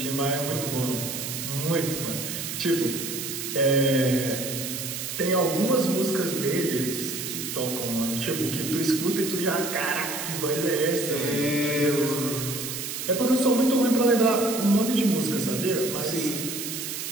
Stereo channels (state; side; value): noise; right; hiss, 5 dB below the sound